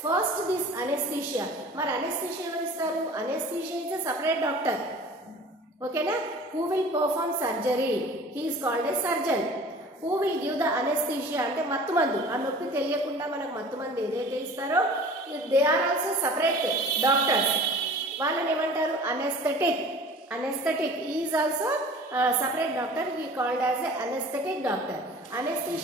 First this anesthesia. మరి అనెస్థీషియా ఎవరు ఇస్తారు? Anesthesia is a separate doctor. ఓకేనా? Who will perform surgery, he is called a surgeon. Who will give the anesthesia అంటే మత్తు మందు. ఆ నొప్పి తెలియకుండా మనకు మత్తు మందు ఏదైతే ఇస్తారో they are also separate doctors. వాళ్ళని ఏమంటారు? Anaesthetic. Anaesthetic is also separate doctor. He called as a anesthetic doctor.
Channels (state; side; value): normal; both; correlation 0.44